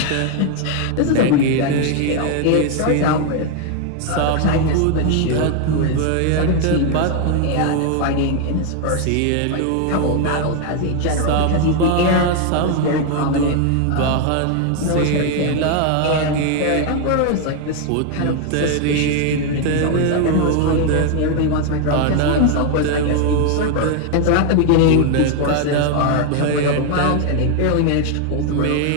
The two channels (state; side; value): different; both; correlation 0.01